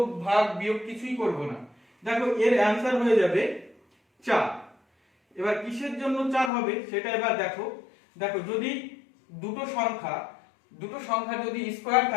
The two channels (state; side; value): drops out; right; at 6.5 s